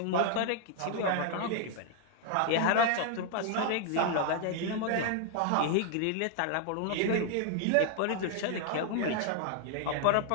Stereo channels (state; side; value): different; both; correlation 0.00